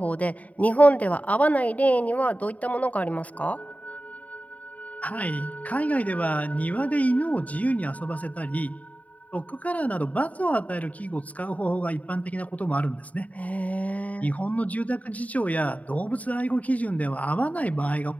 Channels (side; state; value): right; late; 0.070 ms